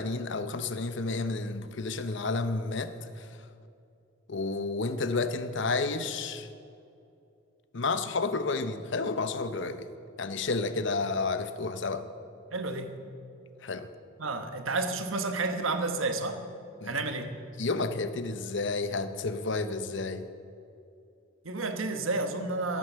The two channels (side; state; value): both; normal; correlation 0.01